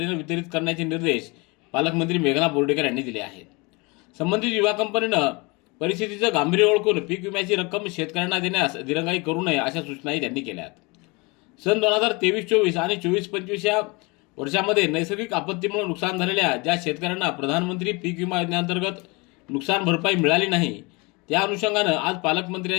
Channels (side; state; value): right; quieter; 27.2 dB